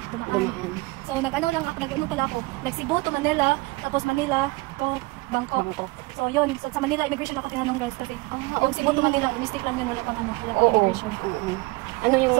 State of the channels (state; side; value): quieter; left; 24.3 dB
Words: dumaan. So, nag-ano pala ako. Nag-Cebu to Manila, tapos Manila to Bangkok. So, yun. So, sa Manila, immigration ako tinanong guys kasi yung Cebu to Manila, mistake lang yun, wala pang immigration. Ano yung